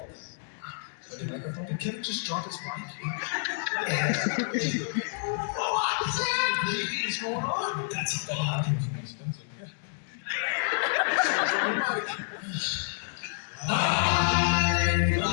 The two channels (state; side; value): silent; right; digital silence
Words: The microphone. Did Kevin just drop his mic? What is going on? That's bad.